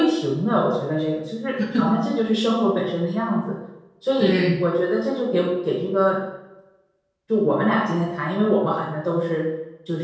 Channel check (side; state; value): both; identical; correlation 1.00